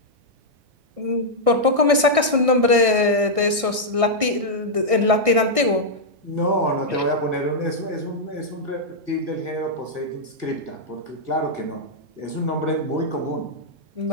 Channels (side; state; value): left; late; 1.6 ms